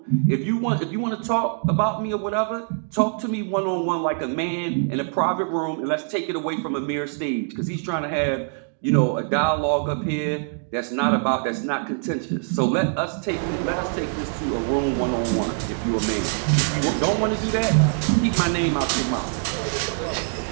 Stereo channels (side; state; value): left; silent; 63 dB below the other